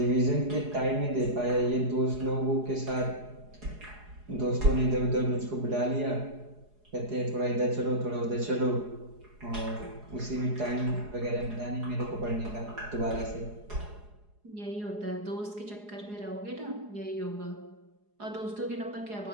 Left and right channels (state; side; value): late; left; 4.8 ms